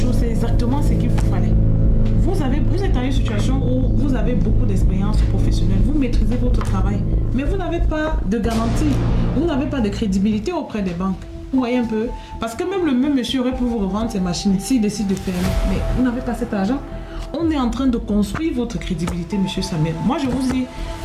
c'est exactement ce qu'il vous fallait. Vous êtes dans une situation où vous avez beaucoup d'expérience professionnelle. Vous maîtrisez votre travail. Mais vous n'avez pas de garantie. Vous n'avez pas de crédibilité auprès des banques. Vous voyez un peu? Parce que même le même monsieur aurait pu vous revendre ses machines s'il décide de fermer. Mais vous n'avez pas cet argent. On est en train de construire votre crédibilité, monsieur Samuel. Moi, je vous dis,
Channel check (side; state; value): both; identical; correlation 1.00